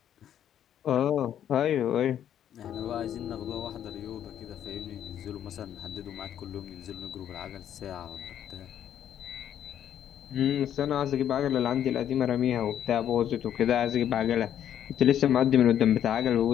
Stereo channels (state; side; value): quieter; right; 10.2 dB